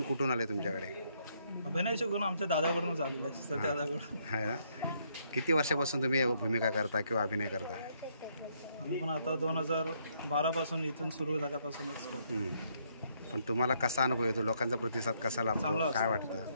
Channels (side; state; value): both; inverted; correlation -0.72